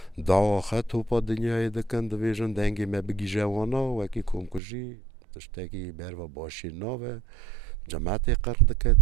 داواخه توپا دنیای دکن دویجن دنگی ما بگی جوانا وکی کمکجی تشتگی بروا باشی ناوه جماعت قرد که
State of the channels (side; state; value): left; drops out; at 4.6 s